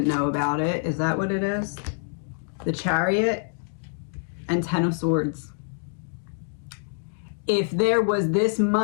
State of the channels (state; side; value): silent; right; 61 dB below the other